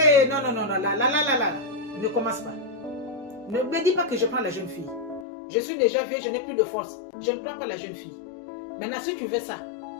non, là. Ne commence pas. Ne me dis pas que je prends la jeune fille. Je suis déjà vieux, je n'ai plus de force. Je ne prends pas la jeune fille. Maintenant, si tu veux ça,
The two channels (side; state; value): right; drops out; at 5.2 s